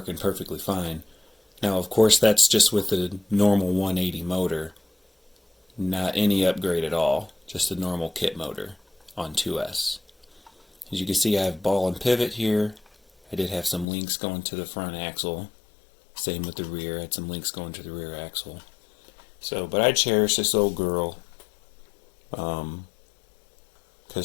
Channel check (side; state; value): right; drops out; at 13.9 s